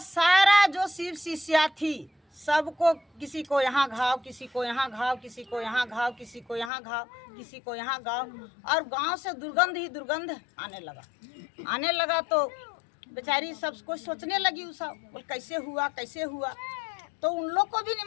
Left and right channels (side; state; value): right; drops out; at 6.7 s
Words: जो शिव शिष्या थी सबको, किसी को यहाँ घाव, किसी को यहाँ घाव, किसी को यहाँ घाव, किसी को यहाँ घाव, किसी को यहाँ घाव, और गांव से दुर्गंध ही दुर्गंध आने लगा। तो बेचारी सबको सोचने लगी, बोल कैसे हुआ। तो उन लोग को भी